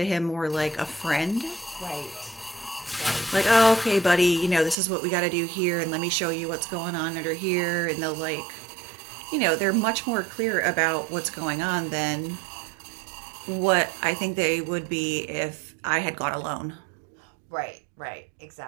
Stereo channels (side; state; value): left; drops out; at 4.8 s